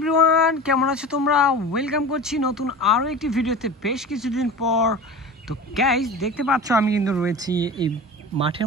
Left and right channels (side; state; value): both; normal; correlation 0.34